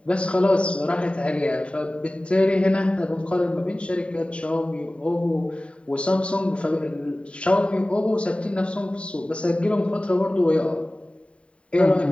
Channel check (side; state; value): right; late; 0.060 ms